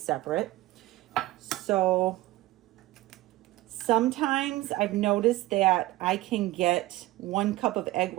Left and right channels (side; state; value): left; quieter; 17.6 dB